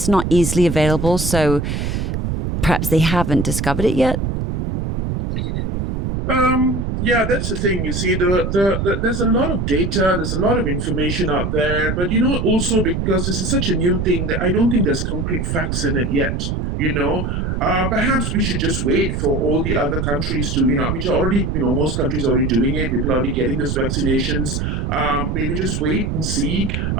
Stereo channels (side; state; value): right; noise; rumble, 1 dB below the sound